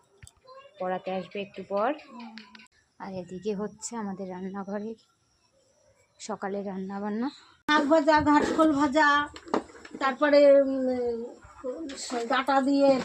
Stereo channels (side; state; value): both; identical; correlation 1.00